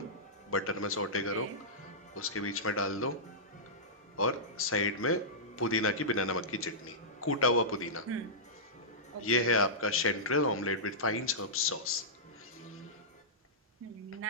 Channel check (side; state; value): both; normal; correlation -0.15